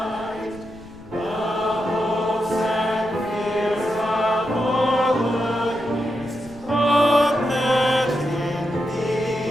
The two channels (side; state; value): left; noise; rumble, 21 dB below the sound